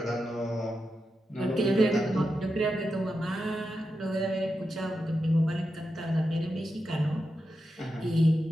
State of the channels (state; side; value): normal; both; correlation 0.88